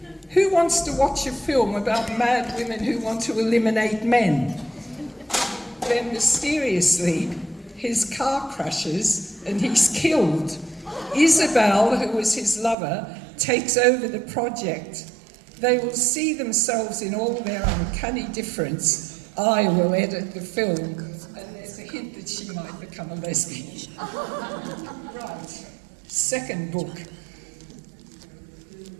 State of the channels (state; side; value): drops out; left; at 12.8 s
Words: Who wants to watch a film about mad women who want to eliminate men? Then mysteriously, his car crashes and he's killed. Isabel, who was his lover, takes over the project. They will see themselves in all their uncanny difference. I will edit the film. And there's a hint that she might become a lesbian. Right. Second book.